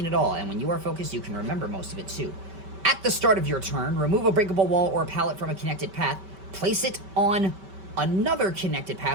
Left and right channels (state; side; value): late; left; 5.2 ms